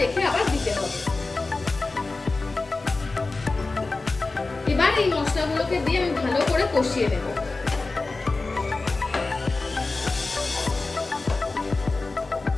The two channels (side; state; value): right; quieter; 3.5 dB